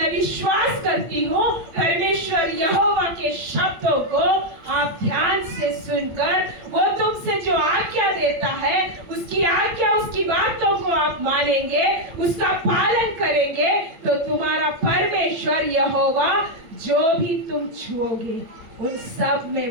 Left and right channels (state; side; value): late; left; 8.7 ms